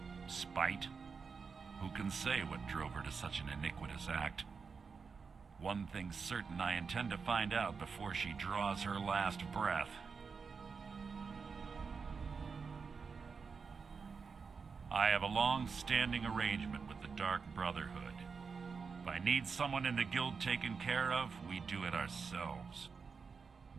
Spite? Who can say what drove her to such an iniquitous act? One thing's certain, I intend to find out before she draws her last breath. I have a long-standing arrangement with the Dark Brotherhood. If I need someone in the guild taken care of, we do it ourselves.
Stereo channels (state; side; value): quieter; left; 5.3 dB